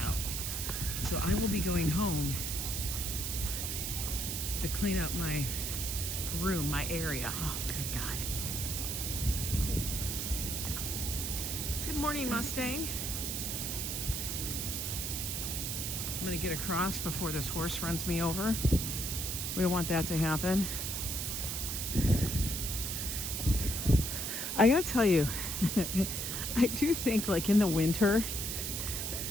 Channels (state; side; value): noise; right; hiss, 2 dB below the sound